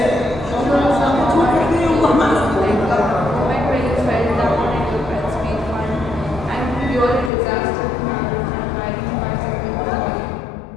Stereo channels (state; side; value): drops out; right; at 7.3 s